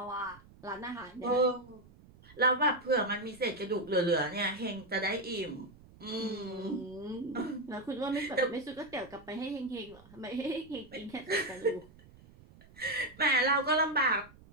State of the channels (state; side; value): noise; right; rumble, 23 dB below the sound